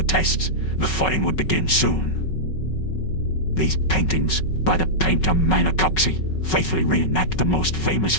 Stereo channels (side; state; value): right; late; 5.4 ms